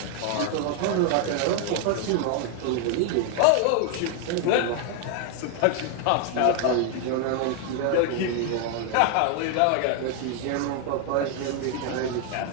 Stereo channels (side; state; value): both; different; correlation 0.00